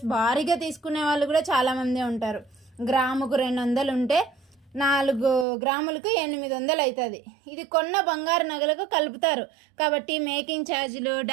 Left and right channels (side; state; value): left; drops out; at 5.5 s